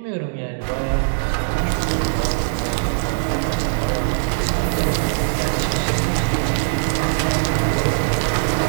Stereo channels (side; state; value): left; silent; digital silence